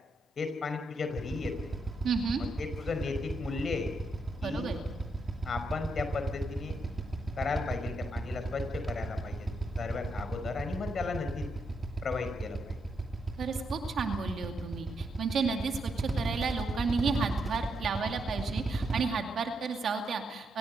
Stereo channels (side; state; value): both; normal; correlation 0.80